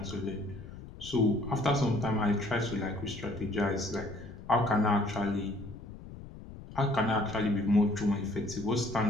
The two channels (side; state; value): left; noise; rumble, 14 dB below the sound